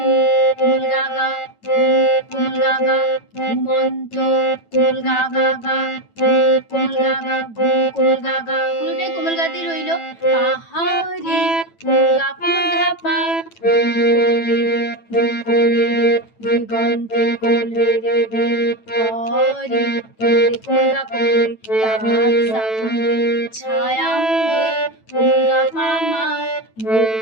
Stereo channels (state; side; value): late; right; 9.0 ms